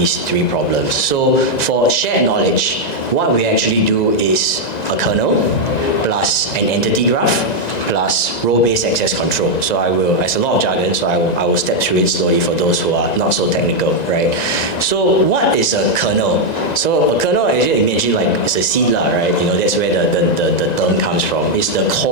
three problems. So for shared knowledge, what we actually do is a kernel plus an entity graph plus role-based access control. So it's a lot of jargon, so I will step through it slowly for those who are not so technical, right? So what is a kernel? So a kernel, as you imagine, like it's a seed, right? That's where the term comes from. It's the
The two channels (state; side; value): late; right; 1.9 ms